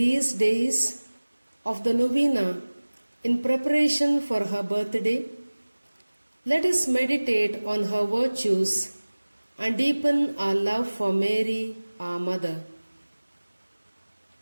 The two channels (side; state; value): both; inverted; correlation -1.00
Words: days of the novena, in preparation for her birthday, let us meditate on her virtues and deepen our love for Mary, our Mother.